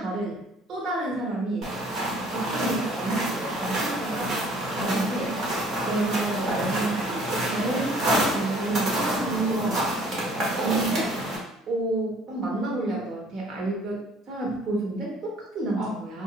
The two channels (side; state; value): both; normal; correlation 0.56